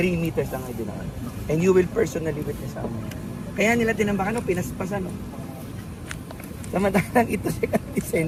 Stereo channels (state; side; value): identical; both; correlation 1.00